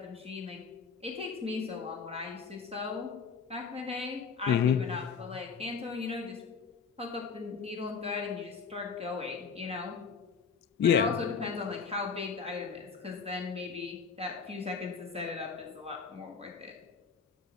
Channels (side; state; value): right; quieter; 5.9 dB